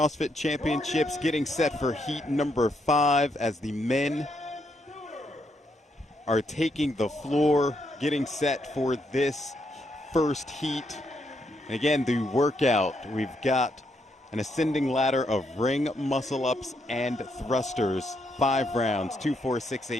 Championships, getting set for heat number 5 as the men are taking the floor, getting set for this first heat. And again, the workout, we've got an ascending ladder of ring muscle-ups and thrusters, 5 rounds, 2, 4, 6,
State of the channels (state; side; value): normal; both; correlation 0.77